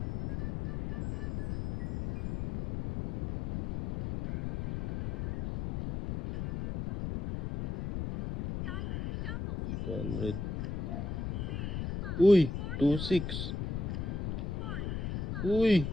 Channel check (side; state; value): left; noise; rumble, 4 dB below the sound